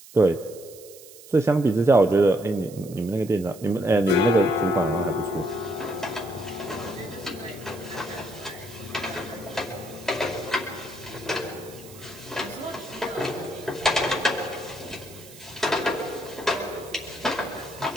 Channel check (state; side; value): noise; right; hiss, 19 dB below the sound